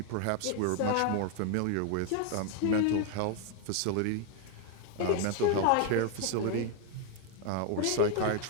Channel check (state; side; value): different; both; correlation 0.01